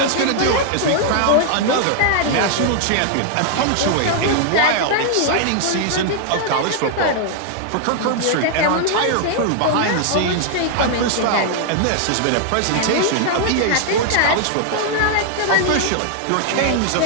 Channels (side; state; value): both; different; correlation 0.00